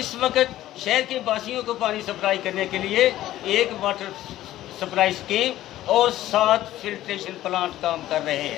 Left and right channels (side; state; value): right; quieter; 14.2 dB